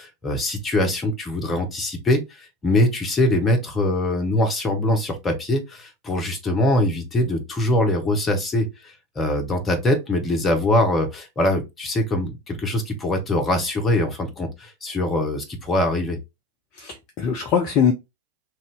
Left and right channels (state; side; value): normal; both; correlation 0.45